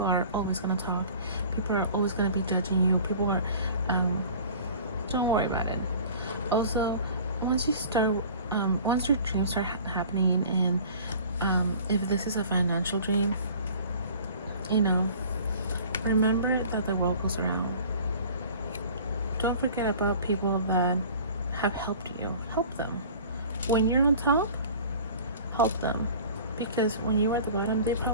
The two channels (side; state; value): both; inverted; correlation -0.44